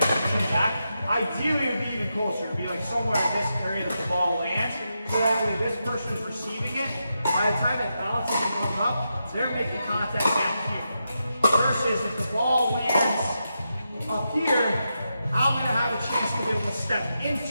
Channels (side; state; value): both; inverted; correlation -0.86